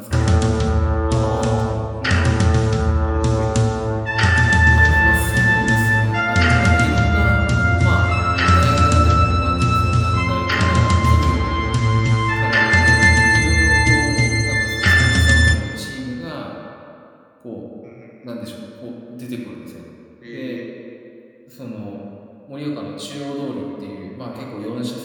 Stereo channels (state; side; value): identical; both; correlation 1.00